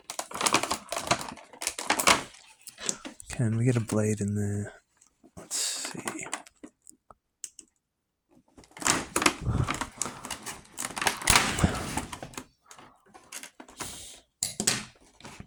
Can we get a blade in there? Let's see.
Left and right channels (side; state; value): both; identical; correlation 1.00